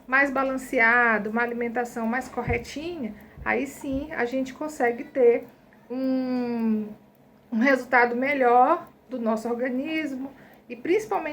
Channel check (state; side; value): identical; both; correlation 1.00